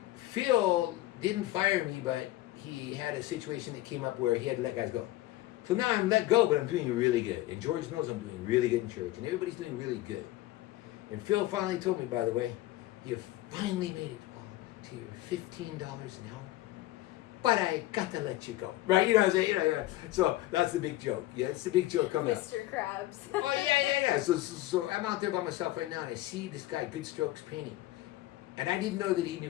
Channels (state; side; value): quieter; right; 16.4 dB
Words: Phil didn't fire me, but he had a situation that came up where he had to let guys go. So now I'm let go, but I'm doing really good. And George knows I'm doing really good in church. And everybody's doing really good. And Phil finally told me, by the way, you finally made it, Paul, to your $15 an hour. But I got to let you go. Right? You know what I'm saying? Yeah. So that's the big joke. Yeah, it's the big joke coming up. Mr. Krabs. Oh, yeah. So I'm out there by myself right now, and I see this guy, Good Strokes painting. And I didn't know that he